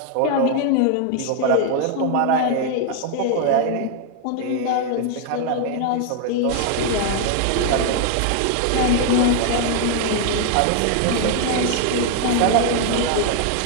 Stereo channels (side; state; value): both; different; correlation 0.00